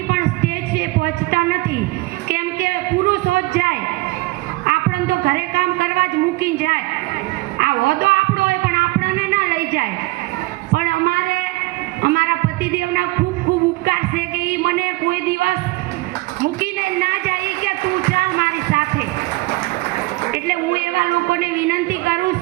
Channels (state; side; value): quieter; left; 22.1 dB